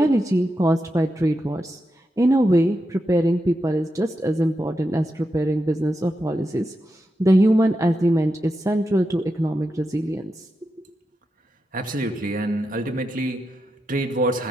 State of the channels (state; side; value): normal; both; correlation 0.87